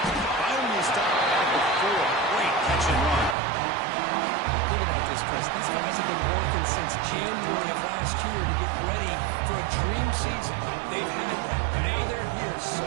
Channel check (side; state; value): left; drops out; at 3.4 s